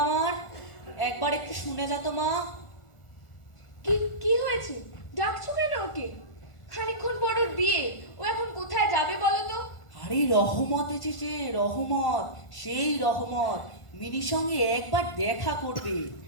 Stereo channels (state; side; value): late; right; 1.4 ms